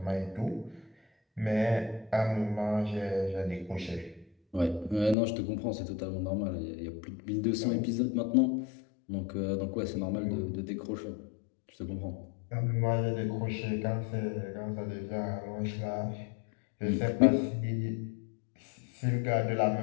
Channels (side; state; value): right; drops out; at 5.2 s